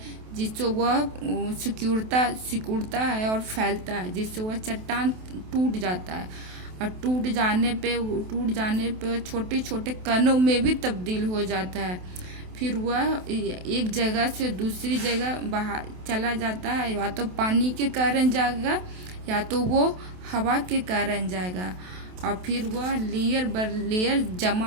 जिससे वह सिकुड़ता है और फैलता है, जिससे वह चट्टान टूट जाता है। और टूट जाने पे छोटे छोटे कणों में भी तब्दील हो जाता है। फिर वह एक जगह से दूसरी जगह बाहर चला जाता है, या तो पानी के कारण जाएगा या तो वो हवा के कारण जाएगा, और फिर वह लेयर बर लेयर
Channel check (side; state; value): left; late; 28 ms